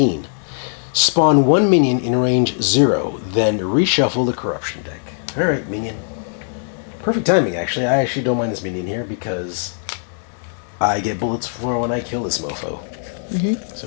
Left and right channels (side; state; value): right; silent; 59 dB below the other